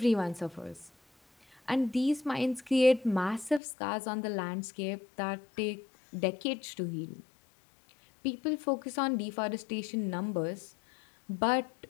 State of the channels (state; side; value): drops out; right; at 3.6 s